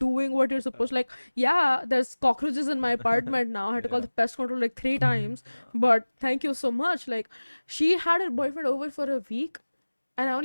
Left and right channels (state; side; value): inverted; both; correlation -1.00